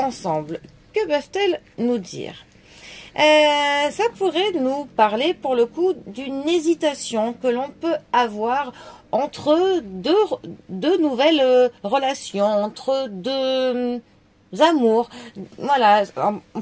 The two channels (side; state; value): both; identical; correlation 1.00